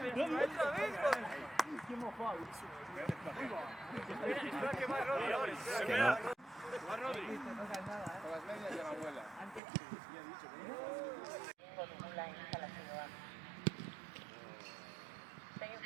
Qué mofado. Espera que va Rodri ahora. Espera que va Rodri. Con las medias de la abuela. La instalación. Se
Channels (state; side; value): drops out; left; at 9.6 s